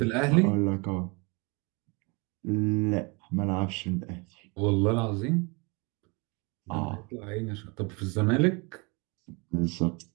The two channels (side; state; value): left; quieter; 29.9 dB